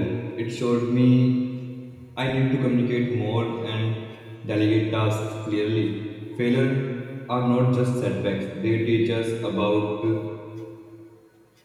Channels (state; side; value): identical; both; correlation 1.00